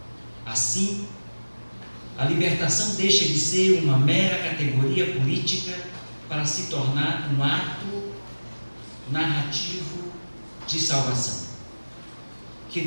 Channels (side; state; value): both; inverted; correlation -1.00